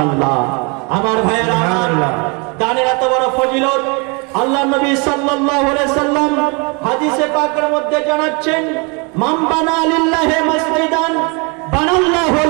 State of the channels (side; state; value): left; quieter; 31.8 dB